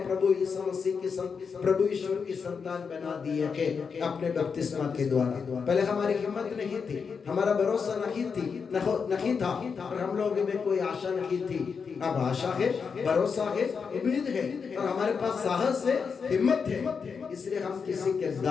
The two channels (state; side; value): quieter; right; 5.8 dB